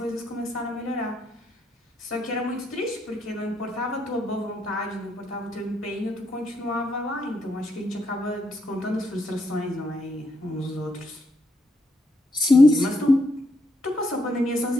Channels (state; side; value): normal; both; correlation 0.76